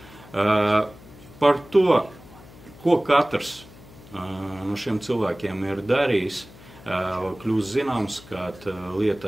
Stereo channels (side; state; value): left; noise; hum, 21 dB below the sound